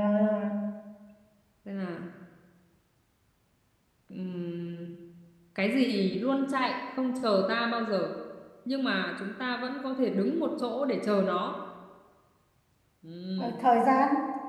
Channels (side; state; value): both; identical; correlation 1.00